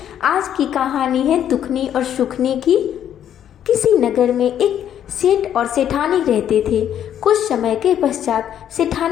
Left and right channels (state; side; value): quieter; right; 10.0 dB